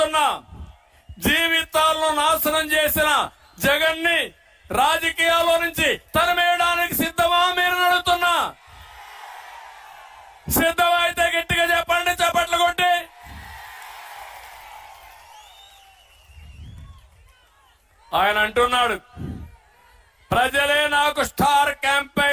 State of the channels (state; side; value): identical; both; correlation 1.00